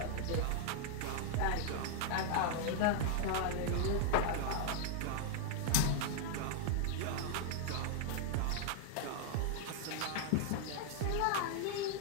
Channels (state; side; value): different; both; correlation 0.00